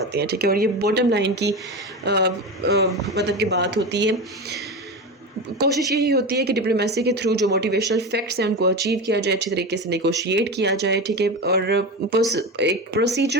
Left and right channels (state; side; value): normal; both; correlation 0.23